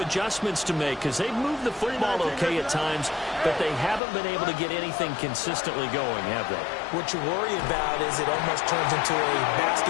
adjustments to make because they've moved the football okay at times, but they haven't been able to get anything consistently going, have they? What you worry about is it almost turns into a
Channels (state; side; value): drops out; right; at 4.0 s